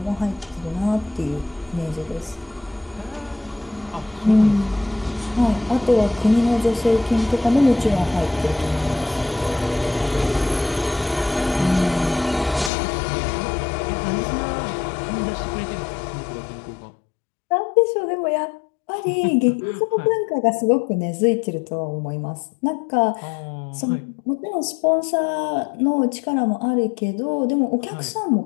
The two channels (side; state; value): right; drops out; at 12.7 s